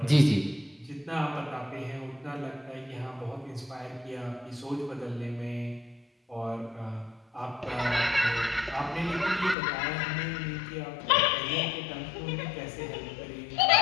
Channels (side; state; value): right; drops out; at 9.6 s